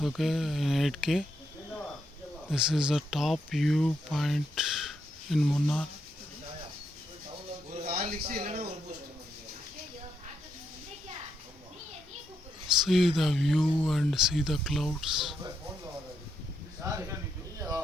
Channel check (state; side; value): normal; both; correlation 0.80